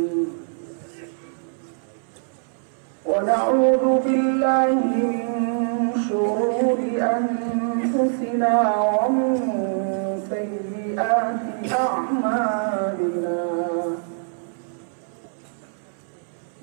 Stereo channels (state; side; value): silent; left; 63 dB below the other